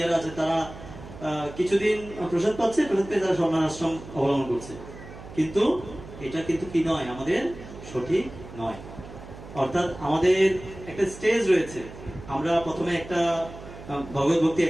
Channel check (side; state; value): right; noise; hum, 15 dB below the sound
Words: আছে, তারা কিছুদিন প্রসাদ পাচ্ছে, প্রসাদ পেয়ে তারা সন্ন্যাস আশ্রম অবলম্বন করছে, কিন্তু এটা কিন্তু কি নয়, আমাদের সঠিক নয়। অর্থাৎ আমাদের একটা স্টেজ রয়েছে, আমরা প্রথমে একটা ভগবত ভক্তি